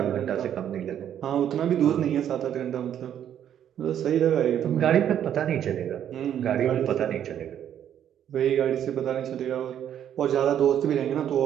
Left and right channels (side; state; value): left; quieter; 10.0 dB